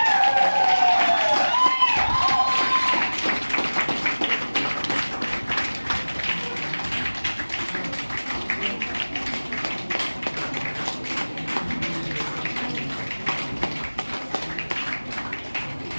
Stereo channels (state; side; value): inverted; both; correlation -1.00